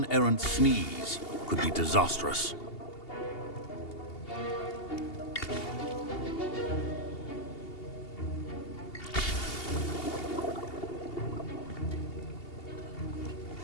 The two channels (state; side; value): late; right; 2.8 ms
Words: errant sneeze could be disastrous.